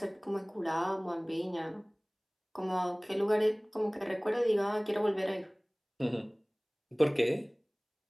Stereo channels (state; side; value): identical; both; correlation 1.00